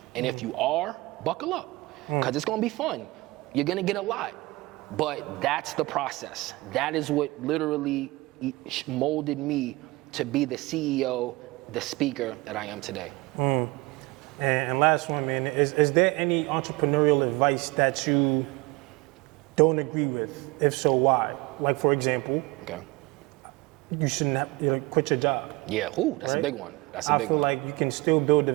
And if you are, buckle up, because it's gonna be fun. You're gonna get a lot, but that's the process. That is what literally molded me to be the CEO, the speaker that I am today. And last one, man, is there any entrepreneurial advice that you don't agree with? If so, why? Like, for example, you shouldn't have, quit your job. Yeah, that's a big one. That's a big one. I feel like you can still build a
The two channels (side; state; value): left; quieter; 22.6 dB